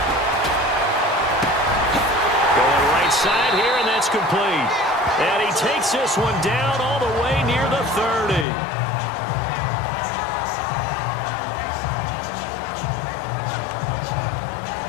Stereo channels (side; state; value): right; drops out; at 8.5 s